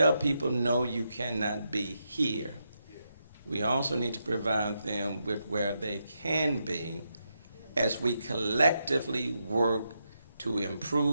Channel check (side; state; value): both; inverted; correlation -0.83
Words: people, no, you cannot be here, we also need to provide them with where they can be as we collectively work to